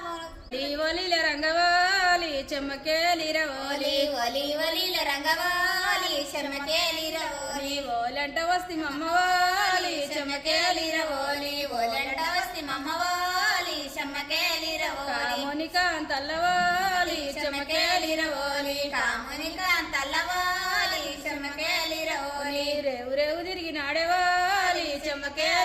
రంగవాలి చెమ్మకేలిరవోలి రంగవాలి చెమ్మకేలిరవోలి ఓలంట వస్తి మమ్మవాలి చెమ్మకేలిరవోలి ఓలంట వస్తి మమ్మవాలి చెమ్మకేలిరవోలి కామునికాంతల్లవాలి చెమ్మకేలిరవోలి కామునికాంతల్లవాలి చెమ్మకేలిరవోలి రేవు రేవు తిరిగి నాడేవాలి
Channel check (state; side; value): identical; both; correlation 1.00